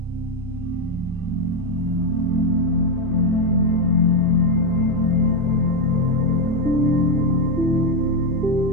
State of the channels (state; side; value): normal; both; correlation 0.06